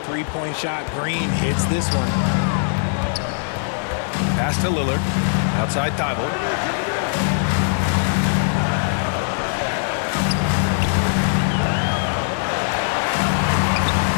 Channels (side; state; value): right; silent; digital silence